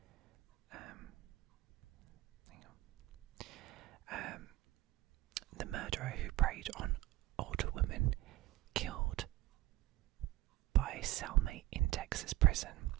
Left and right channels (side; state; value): left; quieter; 16.6 dB